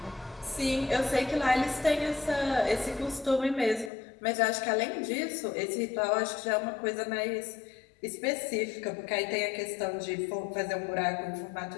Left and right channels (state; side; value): drops out; right; at 3.9 s